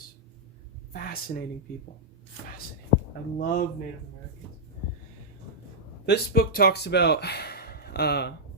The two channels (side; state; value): both; normal; correlation -0.10